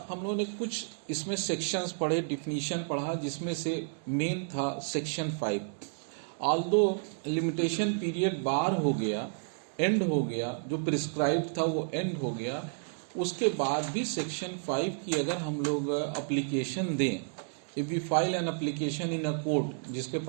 हम लोगों ने कुछ इसमें सेक्शंस पढ़े, डिफिनीशन पढ़ा, जिसमें से मेन था सेक्शन 5। ऑल्दो लिमिटेशन पीरियड बार हो गया, एंड हो गया, जो प्रिस्क्राइब था वो एंड हो गया, उसके बाद भी सेक्शन 5 की अगर हम लोग एप्लीकेशन दें, if we file an application in a court जिसके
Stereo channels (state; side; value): silent; left; 57 dB below the other